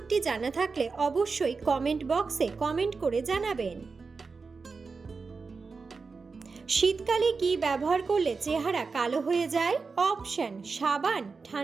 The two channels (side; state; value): left; quieter; 4.6 dB